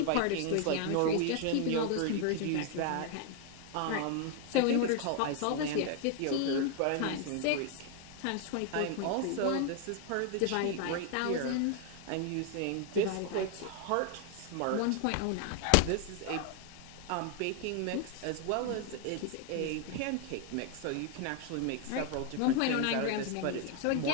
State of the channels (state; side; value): different; both; correlation 0.00